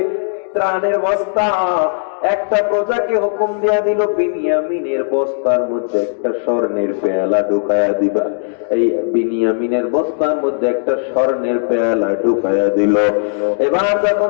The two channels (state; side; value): silent; right; digital silence